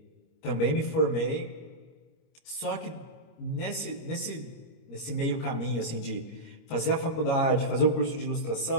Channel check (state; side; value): late; right; 25 ms